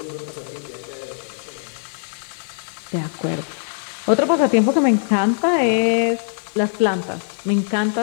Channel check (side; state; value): right; silent; digital silence